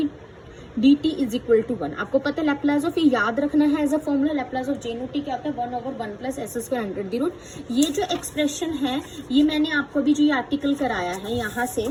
dt = 1। आपको पता है लैप्लास ऑफ ये याद रखना है as a formula, Laplace of J naught t क्या होता है 1/1 + s² अंडर दी रूट। ये जो एक्सप्रेशन है ये मैंने आपको अभी जो ये आर्टिकल कराया है यहाँ से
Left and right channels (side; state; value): both; identical; correlation 1.00